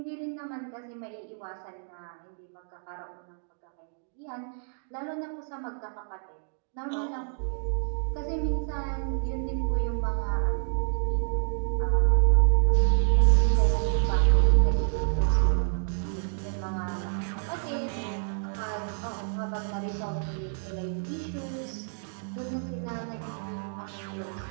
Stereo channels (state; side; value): silent; left; digital silence